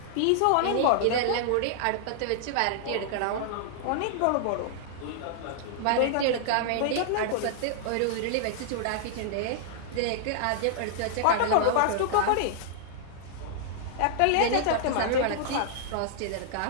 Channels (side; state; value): both; different; correlation -0.01